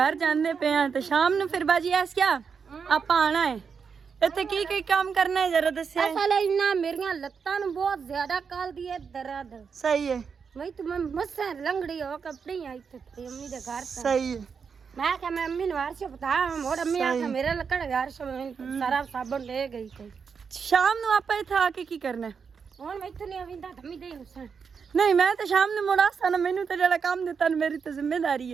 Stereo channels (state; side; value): quieter; left; 6.1 dB